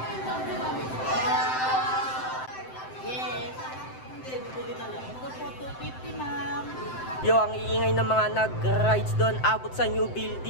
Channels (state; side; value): late; right; 7.8 ms